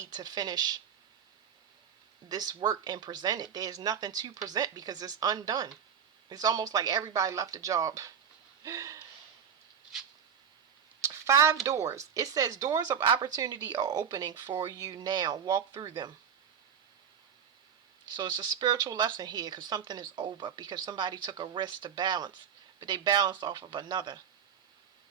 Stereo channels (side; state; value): left; quieter; 7.8 dB